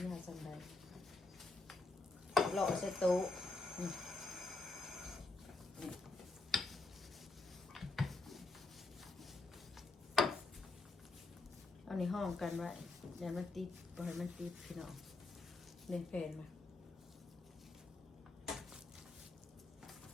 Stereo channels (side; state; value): right; quieter; 3.4 dB